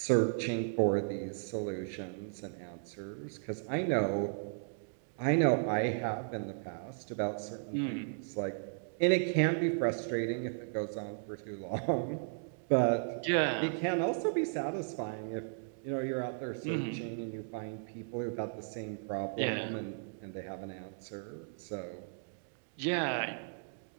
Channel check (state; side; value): silent; left; digital silence